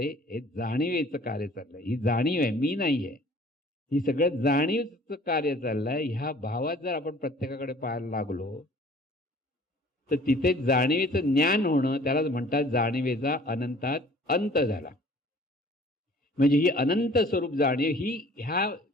हे जाणीवेचं कार्य चाललंय, ही जाणीव आहे, मी नाहीये, ही सगळं जाणीवचं कार्य चाललंय. ह्या भावात जर आपण प्रत्येकाकडे पाहायला लागलो तर तिथे जाणीवेचं ज्ञान होणं, त्यालाच म्हणतात जाणीवेचा अनंतात अंत झाला. म्हणजे ही अनंत स्वरूप जाणीव ही ह्या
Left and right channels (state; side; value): normal; both; correlation 0.51